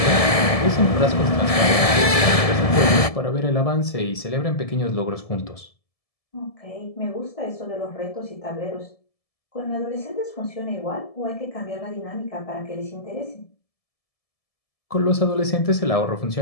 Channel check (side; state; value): right; late; 1.7 ms